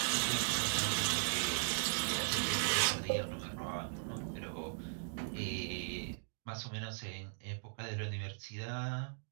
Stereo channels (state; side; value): silent; left; digital silence